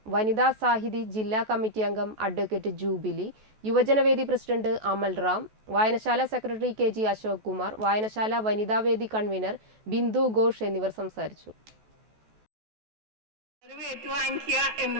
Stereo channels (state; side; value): late; left; 14 ms